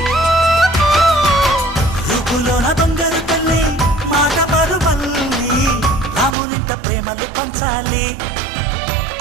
రూపులోన దొంగలు తల్లి మాట పరుమల్లి రామునింట ప్రేమలు పంచాలి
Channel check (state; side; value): drops out; left; at 6.4 s